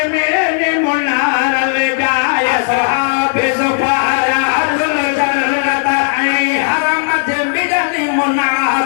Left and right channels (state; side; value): silent; right; digital silence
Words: मेले मुनार ले जाय साहबे सुपारियाजुल जन्नत ऐं हरम जे मिलनी